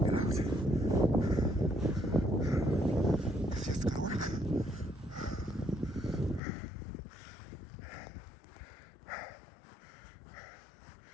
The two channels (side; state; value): right; drops out; at 6.4 s